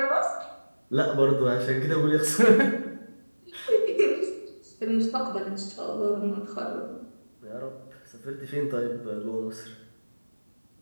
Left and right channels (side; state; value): both; inverted; correlation -1.00